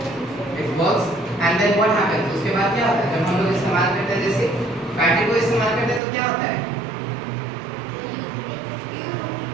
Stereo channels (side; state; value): left; drops out; at 6.0 s